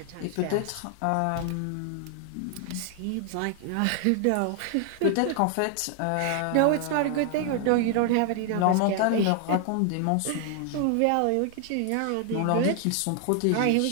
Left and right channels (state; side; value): different; both; correlation 0.00